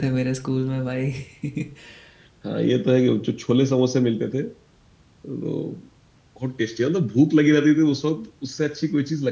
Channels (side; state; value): both; identical; correlation 1.00